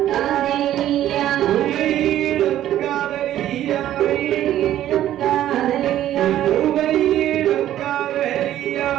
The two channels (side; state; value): left; quieter; 12.4 dB